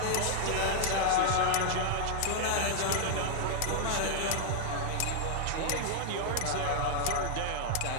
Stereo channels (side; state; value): both; different; correlation 0.00